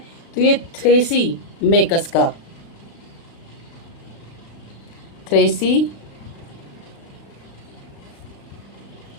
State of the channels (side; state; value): right; late; 36 ms